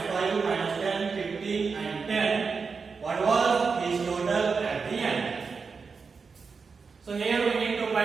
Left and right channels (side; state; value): left; quieter; 5.1 dB